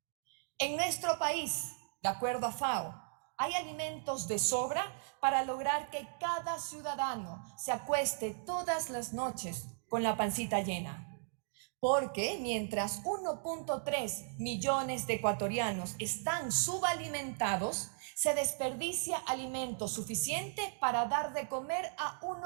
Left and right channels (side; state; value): left; silent; digital silence